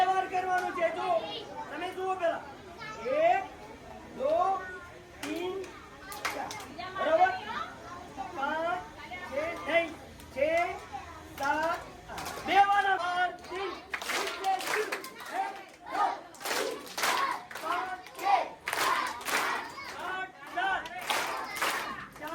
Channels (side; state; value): both; identical; correlation 1.00